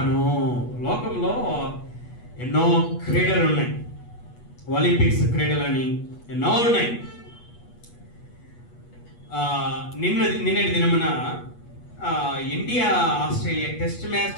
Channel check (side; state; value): right; late; 8.3 ms